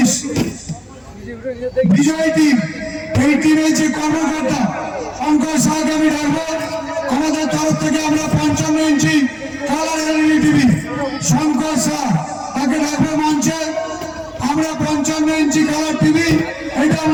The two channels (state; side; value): identical; both; correlation 1.00